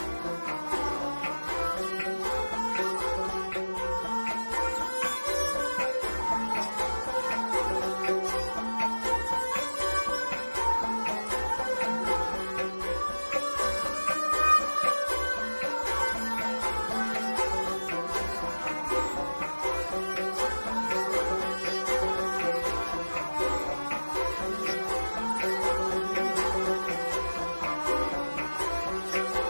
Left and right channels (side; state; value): both; inverted; correlation -1.00